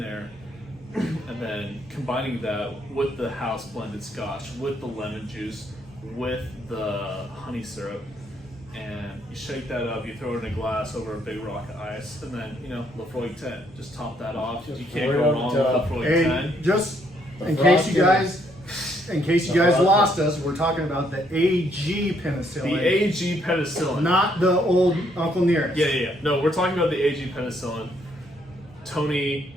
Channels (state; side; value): normal; both; correlation 0.70